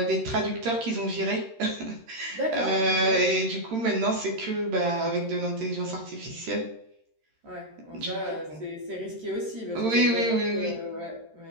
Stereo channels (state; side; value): late; left; 13 ms